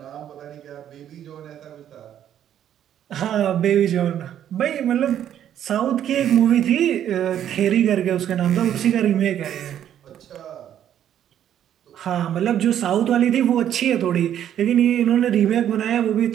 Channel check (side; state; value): left; quieter; 10.4 dB